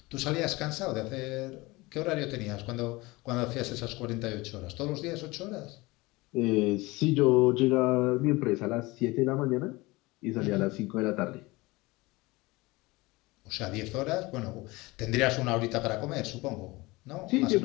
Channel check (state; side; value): quieter; right; 22.1 dB